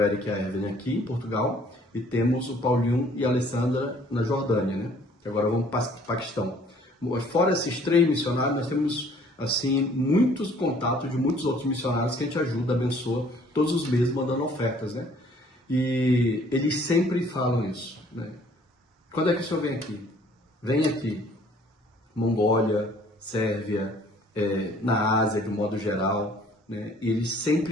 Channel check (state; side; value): normal; both; correlation 0.57